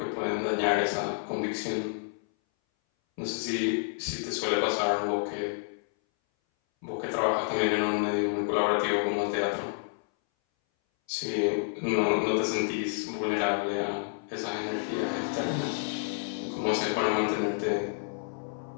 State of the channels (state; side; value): silent; right; 58 dB below the other